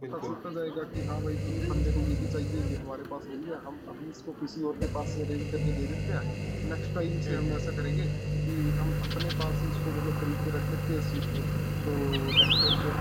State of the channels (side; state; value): both; identical; correlation 1.00